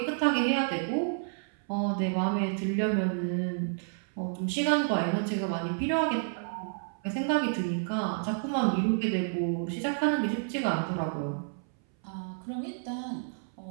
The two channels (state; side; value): silent; left; 58 dB below the other